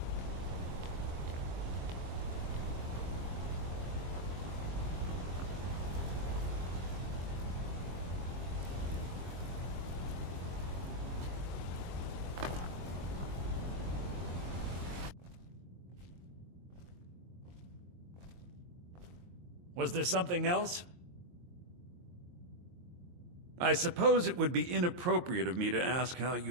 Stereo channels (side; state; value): left; late; 22 ms